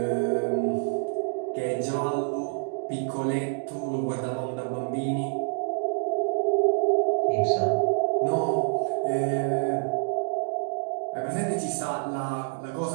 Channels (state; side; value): silent; left; digital silence